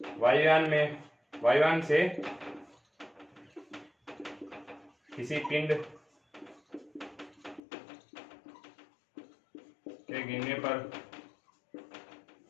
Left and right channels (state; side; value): drops out; right; at 7.6 s